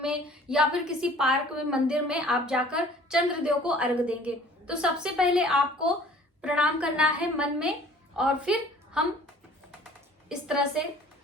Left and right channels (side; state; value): both; normal; correlation 0.50